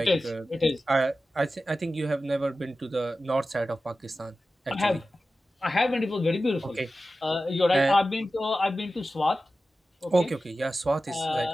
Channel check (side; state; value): both; normal; correlation 0.94